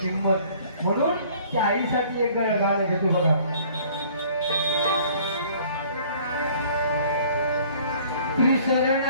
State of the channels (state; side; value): inverted; both; correlation -0.55